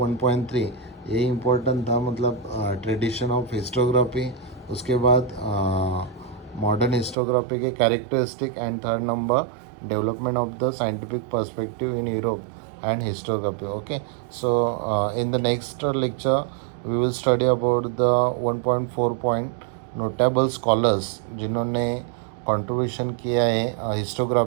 ये इम्पोर्टेंट था, मतलब ट्रेडिशन ऑफ हिस्टोग्राफी, उसके बाद मॉडर्न हिस्टोग्राफी के characteristic, and third number development of the scientific perspective in Europe and historiography. Okay, so in the next lecture we will study about the 1.4 point notable scholars जिन्होंने contribution किया है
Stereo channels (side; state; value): left; drops out; at 7.2 s